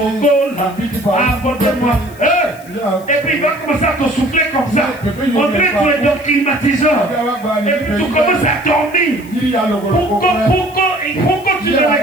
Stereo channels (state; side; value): noise; left; hiss, 23 dB below the sound